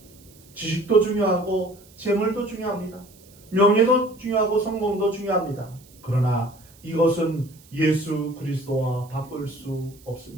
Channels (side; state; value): right; noise; hiss, 26 dB below the sound